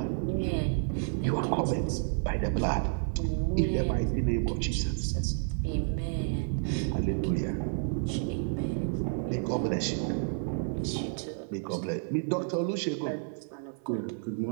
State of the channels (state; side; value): silent; left; digital silence